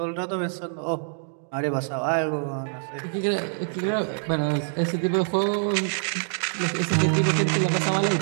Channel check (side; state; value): left; silent; digital silence